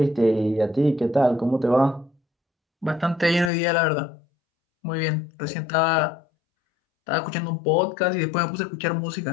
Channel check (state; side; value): drops out; right; at 3.5 s